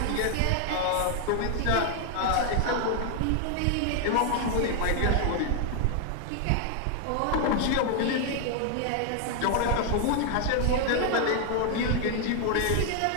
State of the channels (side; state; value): both; different; correlation 0.00